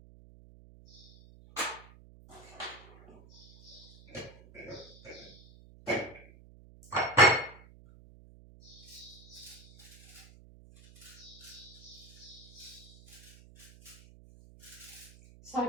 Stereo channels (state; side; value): noise; right; hum, 21 dB below the sound